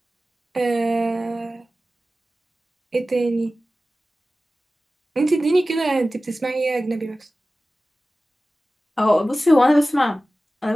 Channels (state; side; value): normal; both; correlation 0.96